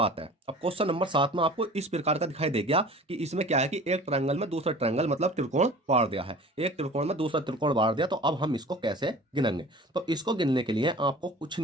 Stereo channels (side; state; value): both; normal; correlation 0.42